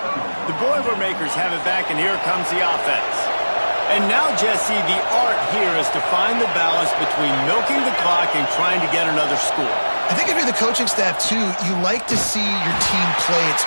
The Boilermakers have it back, and here comes the offense. And now, Jesse, the art here is to find the balance between milking the clock and trying to get another score. I think if you're the coaching staff, too, you like to see your team play its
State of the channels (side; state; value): both; inverted; correlation -1.00